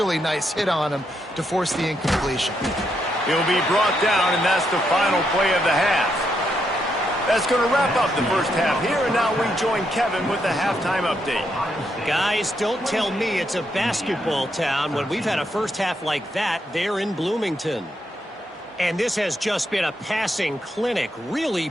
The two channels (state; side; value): normal; both; correlation 0.79